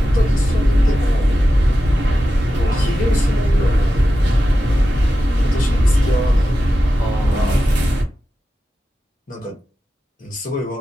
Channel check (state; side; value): normal; both; correlation 0.92